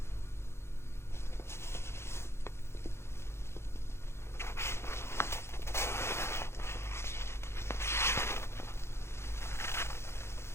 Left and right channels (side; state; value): right; late; 0.12 ms